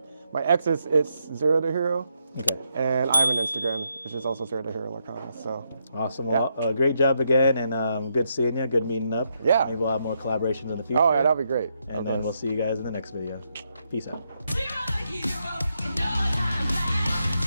X is ZeroTheHero. Okay. And I have an Instagram, which is also ZeroTheHero Lorcana. So awesome. Well, great job again, and good seeing you. Good meeting up. Yeah. Maybe we'll have more collaborations in the future. Oh yeah, that'll be great. And then we'll see you guys in the next video. Peace out. ZeroTheHero.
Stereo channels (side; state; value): both; inverted; correlation -0.79